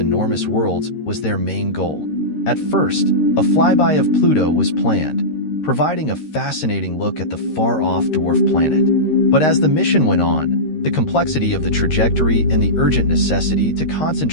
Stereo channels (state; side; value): late; right; 13 ms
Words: worlds was their main goal. At first, a flyby of Pluto was planned, providing a fascinating look at the far-off dwarf planet. But as the mission went on, the complexity of the trajectory and the urgent necessity to